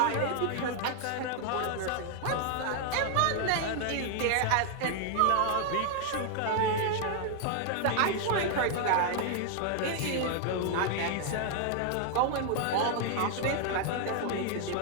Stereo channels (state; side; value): different; both; correlation 0.00